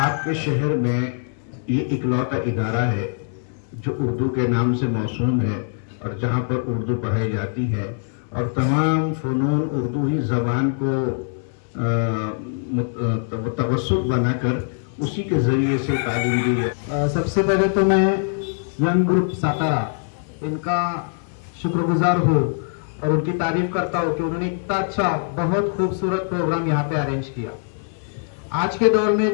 शहर में ये इकलौता इदारा है जो उर्दू के नाम से मौसूम है और जहाँ पर उर्दू पढ़ाई जाती है, और तमाम फ़नून उर्दू ही ज़बान को तवस्सुत बनाकर उसी के ज़रिए से तालीम दी है। सबसे पहले तो मैं यंग ग्रुप सातारा इनका शुक्रगुजार हूँ और उनकी तारीफ करता हूँ कि उन्होंने इतना अच्छा बहुत खूबसूरत प्रोग्राम यहाँ पे अरेंज किया। आज के दौर में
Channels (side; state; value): right; silent; digital silence